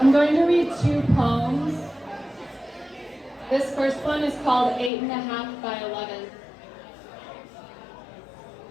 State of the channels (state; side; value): drops out; right; at 4.9 s